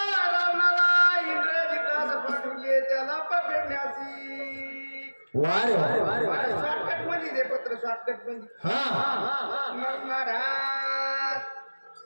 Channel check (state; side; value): inverted; both; correlation -1.00